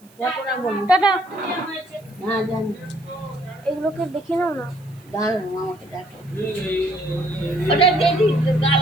হ্যাঁ জানি। এগুলোকে দেখে নাও না। দাঁড়ানো আমাকে দেখো, ওটা দেখি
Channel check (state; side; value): noise; right; hiss, 29 dB below the sound